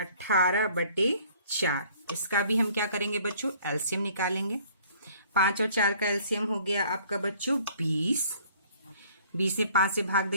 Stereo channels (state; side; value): inverted; both; correlation -0.57